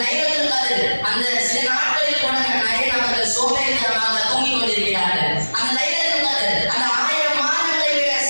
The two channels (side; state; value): both; inverted; correlation -1.00